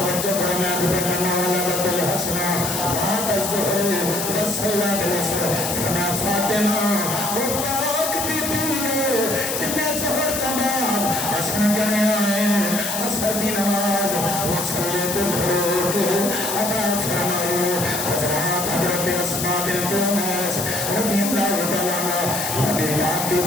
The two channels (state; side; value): noise; left; hiss, 3 dB below the sound